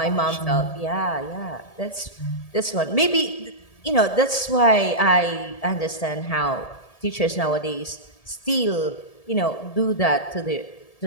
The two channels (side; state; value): right; late; 1.7 ms